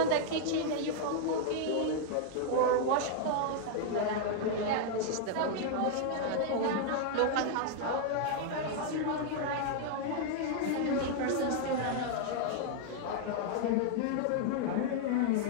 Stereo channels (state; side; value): different; both; correlation -0.01